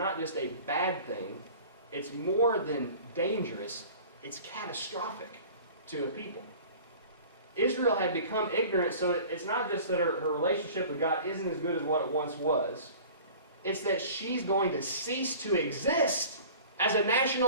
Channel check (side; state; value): both; inverted; correlation -0.43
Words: just a bad thing. It's more than dangerous. It's catastrophic to a people. Israel had become ignorant, so it's not just that her relationship with God isn't as good as what it once was. It's that she's going to cease to exist as a